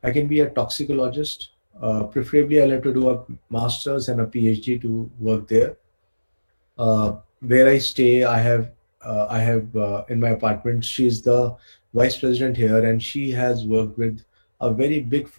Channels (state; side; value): inverted; both; correlation -1.00